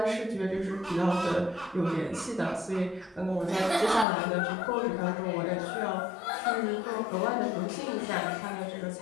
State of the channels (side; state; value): right; drops out; at 4.0 s